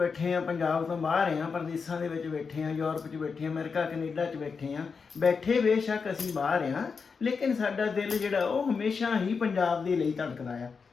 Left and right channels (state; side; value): quieter; right; 5.3 dB